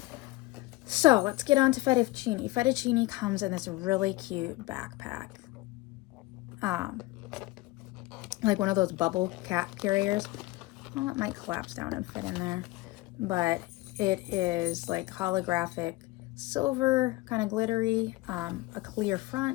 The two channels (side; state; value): right; quieter; 20.1 dB